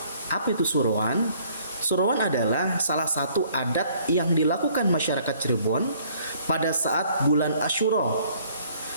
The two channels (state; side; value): inverted; both; correlation -0.60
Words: Apa itu Surowan? Surowan adalah salah satu adat yang dilakukan masyarakat Cirebon pada saat bulan Asyura.